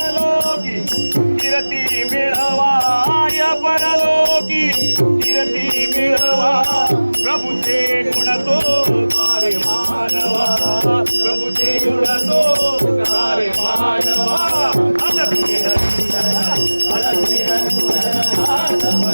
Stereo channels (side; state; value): both; inverted; correlation -1.00